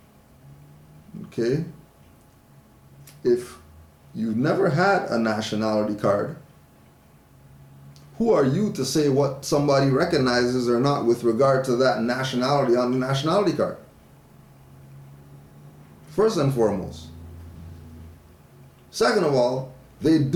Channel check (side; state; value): both; identical; correlation 1.00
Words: Okay? If you've never had a nationality card, who are you to say what somebody recognizes or not with regard to that nationality on the nationality card? First and foremost. Second of all, they